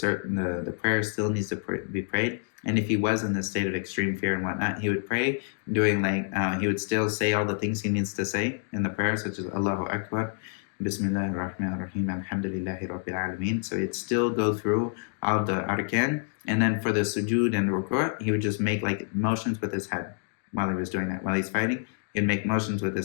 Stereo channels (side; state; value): right; silent; 60 dB below the other